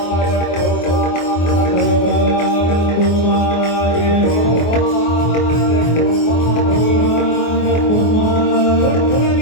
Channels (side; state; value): right; late; 24 ms